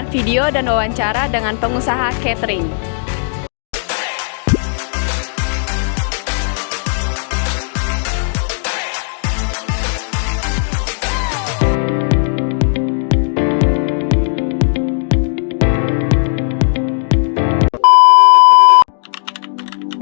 video dan wawancara dengan pengusaha catering.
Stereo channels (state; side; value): silent; right; digital silence